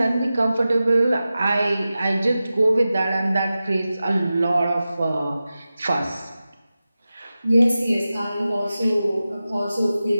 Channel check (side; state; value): both; inverted; correlation -0.94